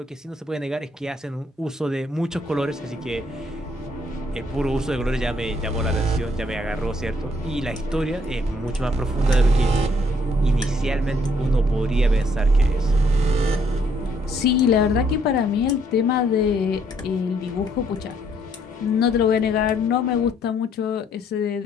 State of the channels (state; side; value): normal; both; correlation 0.68